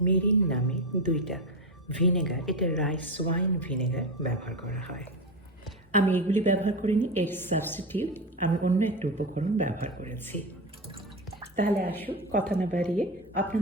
মিরিন নামে দুইটা ভিনেগার, এটা রাইস ওয়াইন ভিনেগার ব্যবহার করা হয়। আমি এগুলি ব্যবহার করিনি, এর সাবস্টিটিউট আমি অন্য একটা উপকরণ ব্যবহার করেছি। তাহলে আসুন কথা না বাড়িয়ে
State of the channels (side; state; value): both; normal; correlation 0.17